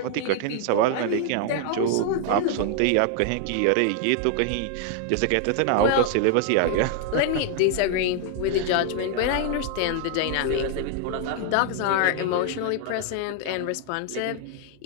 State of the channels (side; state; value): both; different; correlation 0.00